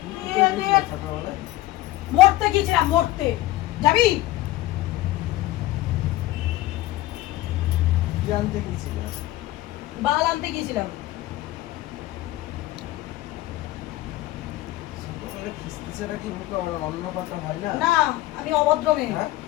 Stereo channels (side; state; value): right; quieter; 16.6 dB